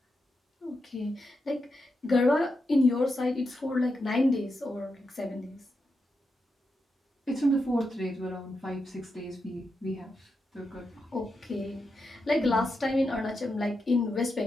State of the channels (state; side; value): normal; both; correlation 0.86